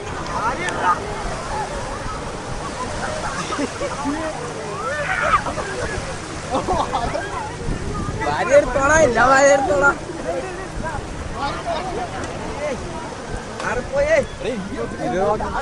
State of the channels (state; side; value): identical; both; correlation 1.00